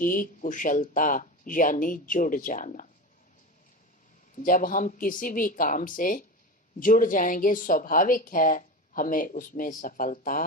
कुशलता, यानी जुड़ जाना। जब हम किसी भी काम से जुड़ जाएंगे, स्वाभाविक है हमें उसमें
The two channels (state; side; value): normal; both; correlation 0.25